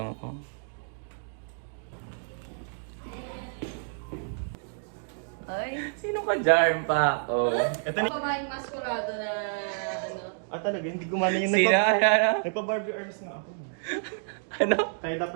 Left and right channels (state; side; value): silent; left; digital silence